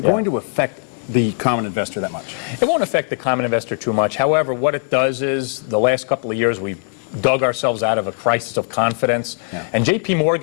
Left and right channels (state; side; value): silent; right; 66 dB below the other